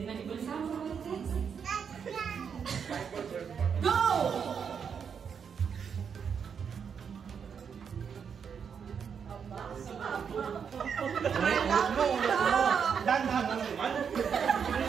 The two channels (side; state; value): left; quieter; 6.9 dB